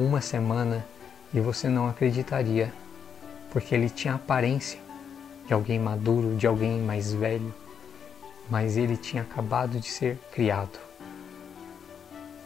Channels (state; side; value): quieter; right; 7.5 dB